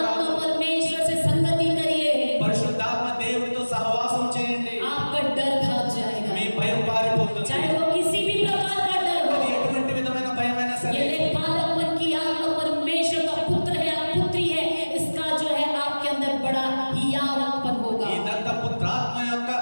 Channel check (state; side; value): inverted; both; correlation -1.00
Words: परमेश्वर से संगति करिए, పరిశుద్ధాత్మ దేవుడితో సహవాసం చేయండి. आपका डर भाग जाएगा, మీ భయం పారిపోతుంది. चाहे वो किसी भी प्रकार का डर అది हो। ఎటువంటి విధమైన భయమైనా సరే ये ले बालकपन की आत्मा परमेश्वर का पुत्र है या पुत्री है, इसका जो है आपके अंदर बड़ा हियाव उत्पन्न होगा। ఈ దత్తపుత్రాత్మ యొక్క